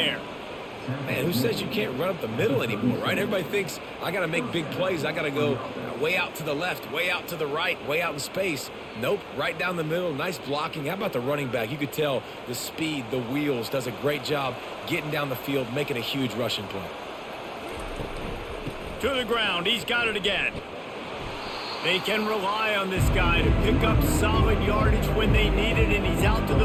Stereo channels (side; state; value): both; identical; correlation 1.00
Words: Man, who says you can't run up the middle anymore, right? Everybody thinks I got to make big plays. I got to go way out to the left, way out to the right, way out in space. Nope, right down the middle. Nice blocking. How about the running back? You could tell the speed, the wheels, does a great job getting down the field, making a huge rushing play. To the ground. He's got it again. They can rely on this guy to pick up solid yardage when they need it, and he's out to